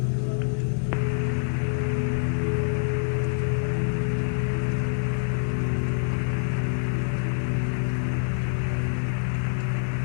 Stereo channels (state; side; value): silent; right; 59 dB below the other